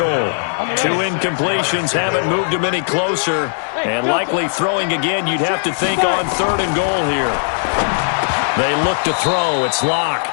2 incompletions haven't moved him any closer, and likely throwing again, you'd have to think on 3rd and goal here. They look to throw. It's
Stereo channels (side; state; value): right; silent; digital silence